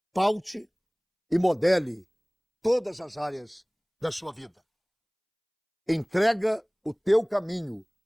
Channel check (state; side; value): identical; both; correlation 1.00